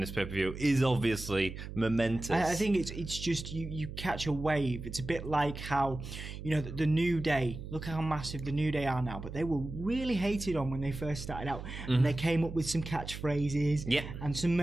pay-per-view is obviously momentous. I think it's just you catch a wave. It's a bit like how, the New Day, look how massive the New Day are now, but they were really hated on when they first started out. And they came up with some catchphrases and some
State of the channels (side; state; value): right; noise; hum, 9 dB below the sound